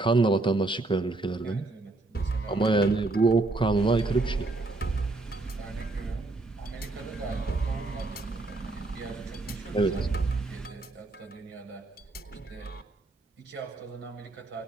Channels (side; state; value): left; quieter; 3.1 dB